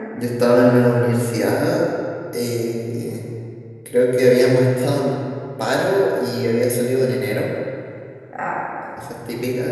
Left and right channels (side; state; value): both; identical; correlation 1.00